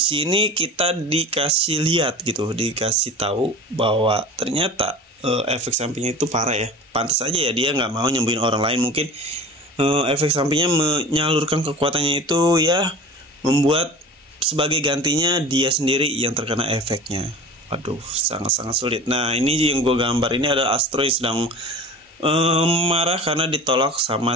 kita dikasih lihat gitu, dikasih tahu bahwa ternyata efek sampingnya itu parah ya. Pantas aja ya dia nggak mau nyembuhin orang lain, mungkin efek sampingnya menyalurkan kekuatannya itu ya, membuat sebagai gantinya dia sendiri yang terkena efeknya. Waduh, sangat-sangat sulit. Nah, ini yang gue gambar ini adalah Astro yang sedang marah karena ditolak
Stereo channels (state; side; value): normal; both; correlation 0.37